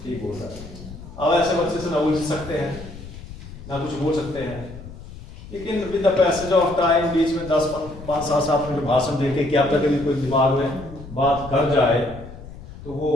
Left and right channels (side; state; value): left; noise; rumble, 15 dB below the sound